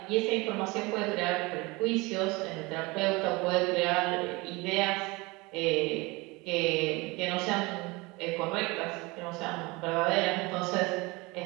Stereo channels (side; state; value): left; quieter; 24.4 dB